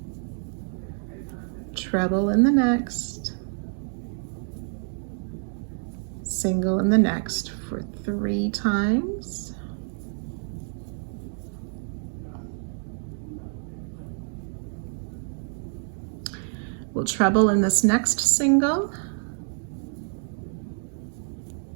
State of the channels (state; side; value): silent; left; 60 dB below the other